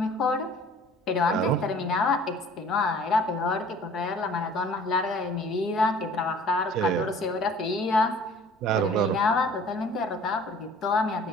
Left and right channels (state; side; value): normal; both; correlation 0.50